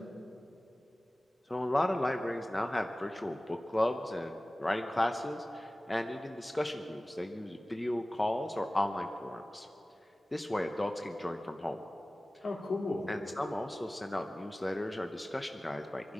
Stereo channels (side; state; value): both; normal; correlation 0.97